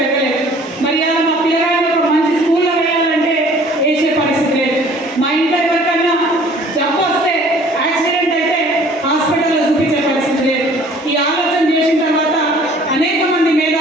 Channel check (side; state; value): both; normal; correlation 0.53